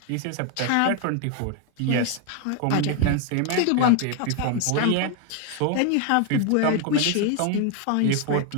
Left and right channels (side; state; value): both; different; correlation 0.01